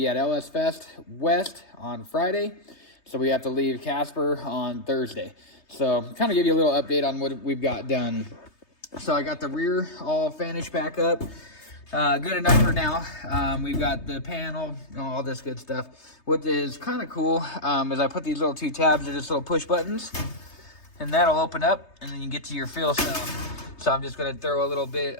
at LS Fest West on Friday, so we have to leave Casper on Thursday. So kind of give you a little update on what we've got done. So I got the rear all finished back up. Good enough for now. We've got the panel, all this good stuff. What is kind of cool is I put these little two tabs, they're just little push buttons, and that'll open up, and then you get to your fuel cell. So I'm just going to throw a little bit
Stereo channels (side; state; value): right; late; 3.3 ms